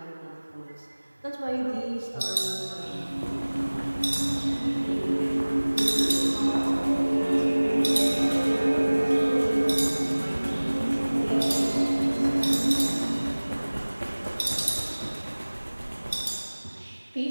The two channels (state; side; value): inverted; both; correlation -1.00